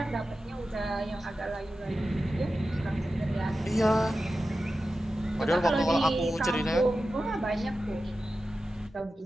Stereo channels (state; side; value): normal; both; correlation 0.93